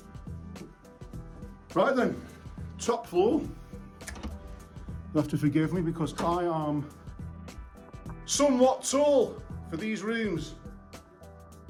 Right then, top floor. You'll have to forgive me because I am somewhat tall for these rooms.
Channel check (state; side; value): identical; both; correlation 1.00